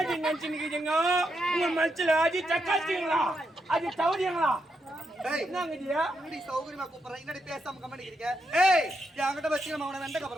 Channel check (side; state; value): both; normal; correlation 0.82